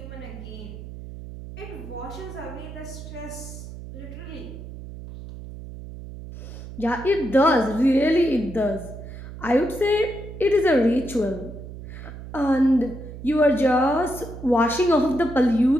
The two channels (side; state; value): right; noise; hum, 12 dB below the sound